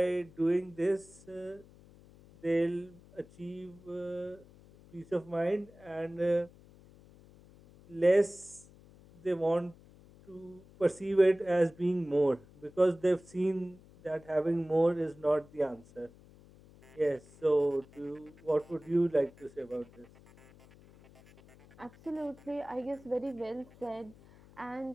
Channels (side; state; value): left; noise; hum, 24 dB below the sound